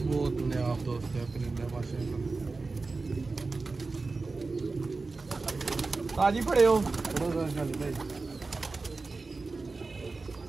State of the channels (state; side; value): quieter; left; 3.8 dB